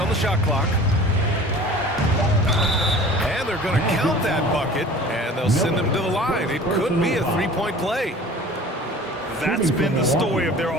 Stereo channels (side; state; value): both; normal; correlation 0.43